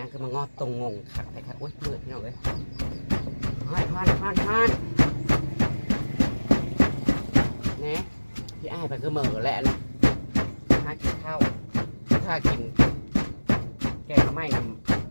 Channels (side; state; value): both; inverted; correlation -1.00